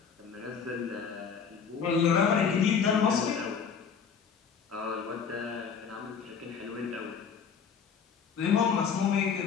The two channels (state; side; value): quieter; right; 6.5 dB